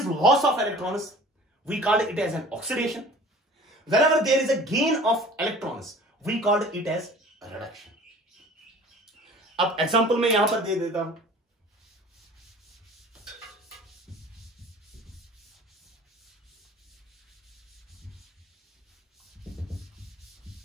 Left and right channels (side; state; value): both; normal; correlation 0.45